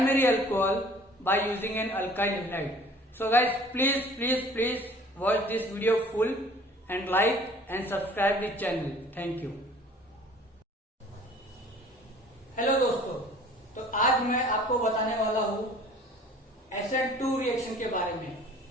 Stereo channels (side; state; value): both; normal; correlation 0.50